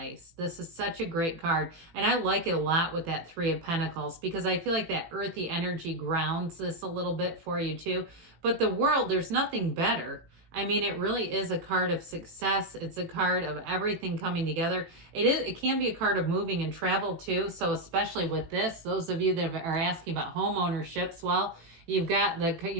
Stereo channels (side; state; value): left; late; 18 ms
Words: This is such a great card. And I like it a lot with that Three of Pentacles, because I feel like that earthy energy grounds this a little bit for you too. But the world, there's nothing better. I mean, it really is a card of success. It's a card of everything coming together. It can be a card of moving and travel too. So especially with this, those of you that are asking about home ownerships, well, you've got